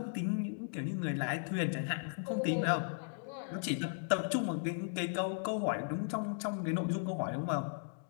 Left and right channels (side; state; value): right; silent; digital silence